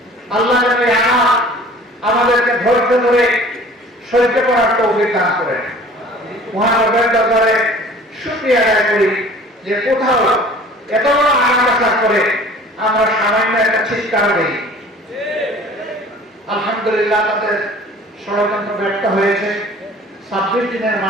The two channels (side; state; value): both; normal; correlation 0.48